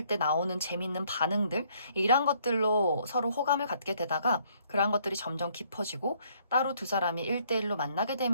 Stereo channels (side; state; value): both; inverted; correlation -0.65